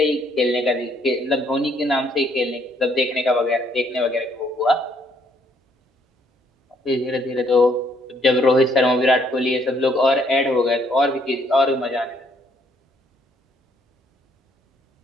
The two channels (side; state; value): both; normal; correlation 0.68